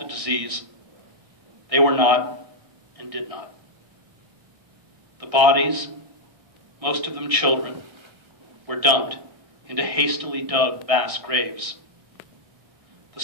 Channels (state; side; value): late; left; 1.6 ms